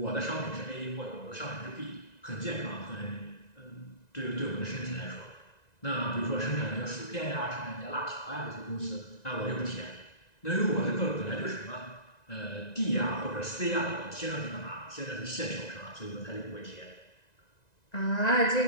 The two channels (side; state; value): right; late; 1.9 ms